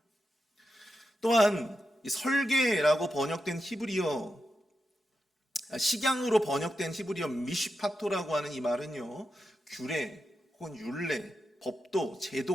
또한 이 설계라고 번역된 히브리어, 식양으로 번역된 히브리어 미시파토라고 하는 이 말은요, 규례 혹은 율례, 법도,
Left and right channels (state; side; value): normal; both; correlation 0.88